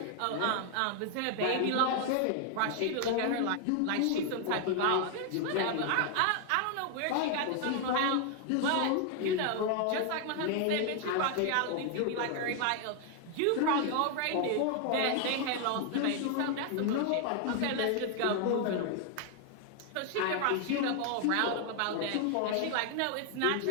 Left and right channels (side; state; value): both; different; correlation 0.00